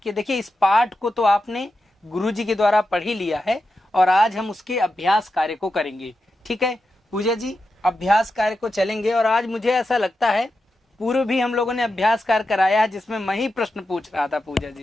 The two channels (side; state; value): both; normal; correlation 0.89